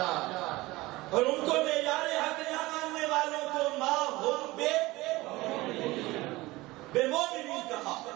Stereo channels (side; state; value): left; quieter; 20.1 dB